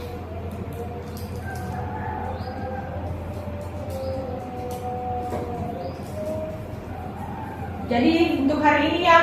Jadi untuk hari ini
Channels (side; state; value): both; identical; correlation 1.00